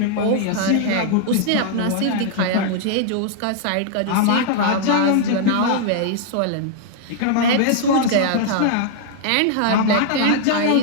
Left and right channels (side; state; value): both; different; correlation -0.01